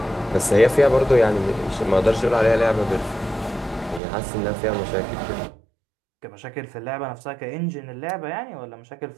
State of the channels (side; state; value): left; drops out; at 4.0 s